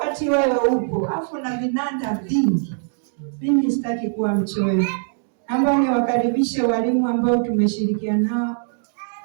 wewe upo afu na vinanda vingi. Mimi sitaki kuwa mchoyo. Naomba niwakaribishe walimu ambao tumeshirikiana nao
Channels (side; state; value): left; silent; digital silence